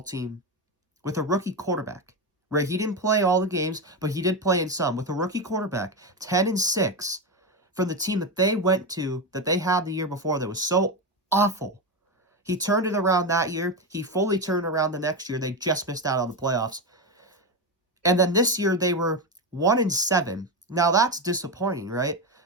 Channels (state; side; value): normal; both; correlation 0.14